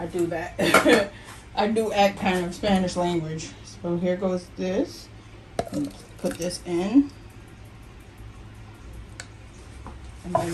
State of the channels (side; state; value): both; identical; correlation 1.00